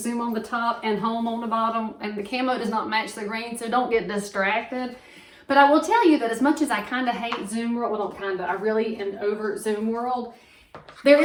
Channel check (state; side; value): identical; both; correlation 1.00